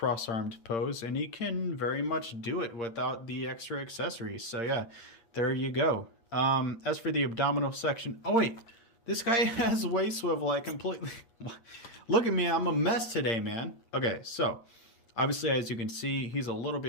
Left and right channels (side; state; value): right; late; 8.7 ms